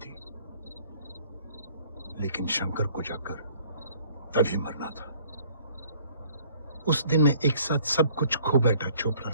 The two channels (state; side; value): inverted; both; correlation -0.57